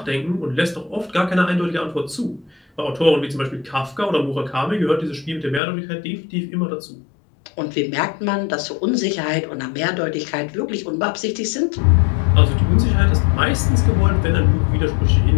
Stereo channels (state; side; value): drops out; right; at 5.6 s